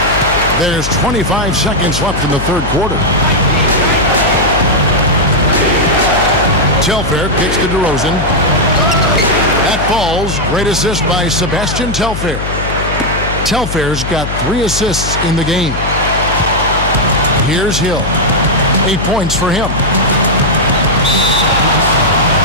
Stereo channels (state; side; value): noise; left; hum, 6 dB below the sound